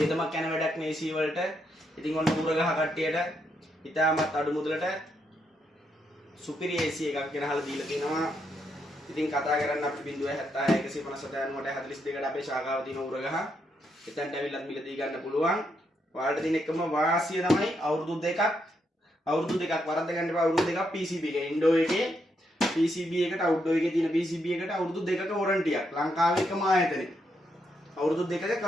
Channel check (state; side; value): normal; both; correlation 0.79